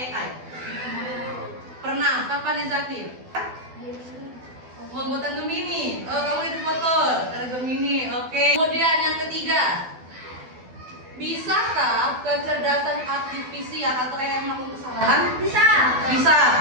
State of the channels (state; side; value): late; left; 12 ms